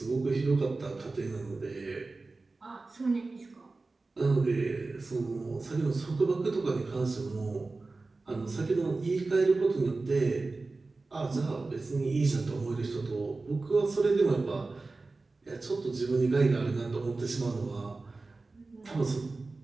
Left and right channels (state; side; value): quieter; left; 3.6 dB